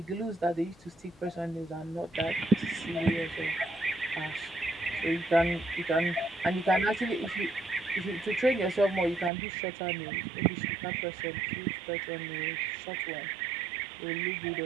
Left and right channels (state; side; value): drops out; left; at 9.3 s